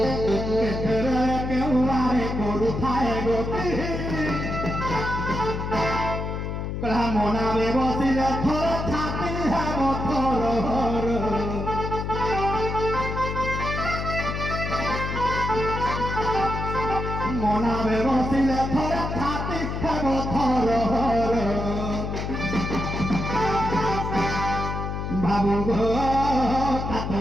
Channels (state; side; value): noise; left; hum, 4 dB below the sound